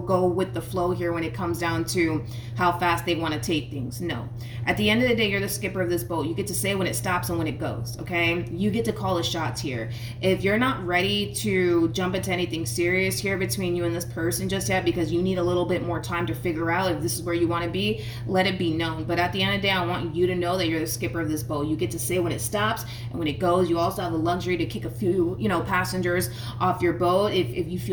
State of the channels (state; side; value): identical; both; correlation 1.00